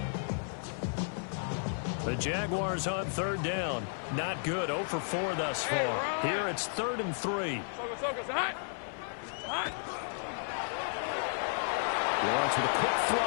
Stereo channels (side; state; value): right; silent; 56 dB below the other